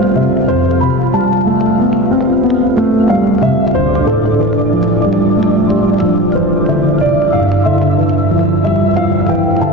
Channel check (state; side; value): normal; both; correlation 0.34